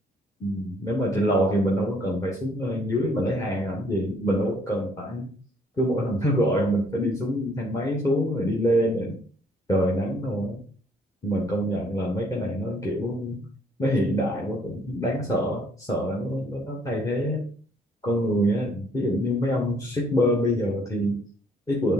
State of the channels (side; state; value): both; normal; correlation 0.64